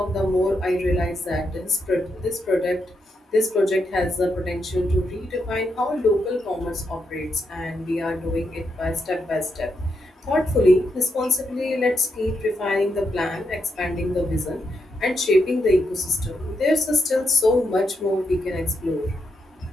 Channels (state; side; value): normal; both; correlation 0.81